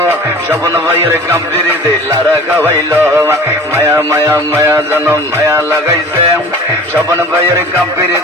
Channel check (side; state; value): both; normal; correlation 0.42